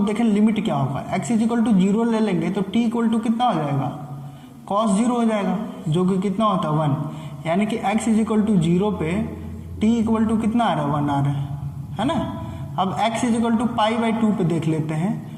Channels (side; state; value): both; identical; correlation 1.00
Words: देखें लिमिट क्या होगा। x = 0 ले लेंगे तो t = कितना हो जाएगा? cos 0 हो जाएगा, जो कि कितना होता है? 1। यानी कि x = 0 पे t = कितना आ रहा है? 1 आ रहा है ना? अब x = π/2 पे देख लेते हैं,